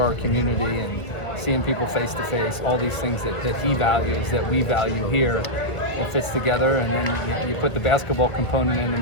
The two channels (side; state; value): right; late; 1.5 ms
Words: our community, and seeing people face to face, all these things that he values, that we value here, it fits together, and then you put the basketball component in the